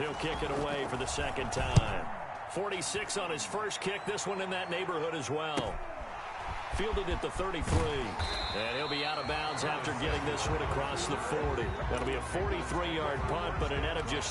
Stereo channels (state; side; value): identical; both; correlation 1.00